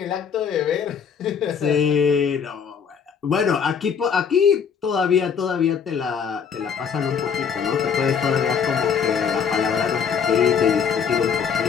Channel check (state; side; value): quieter; right; 6.9 dB